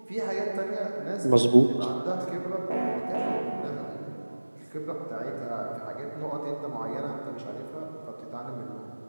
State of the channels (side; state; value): both; inverted; correlation -1.00